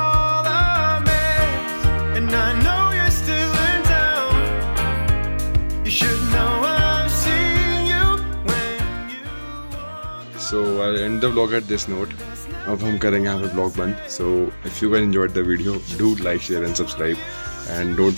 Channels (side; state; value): both; inverted; correlation -1.00